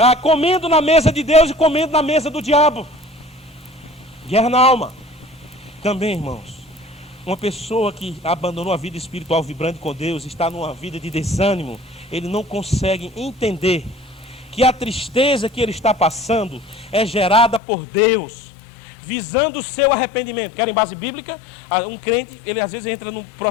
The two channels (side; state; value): right; drops out; at 17.6 s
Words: comendo na mesa de Deus e comendo na mesa do diabo. Guerra na alma. Também, irmãos, uma pessoa que abandonou a vida espiritual vibrante com Deus, está numa vida de desânimo, ele não consegue entender que a tristeza que ele está passando é gerada por Deus, visando o seu arrependimento. Querem base bíblica? Um crente, ele às vezes entra num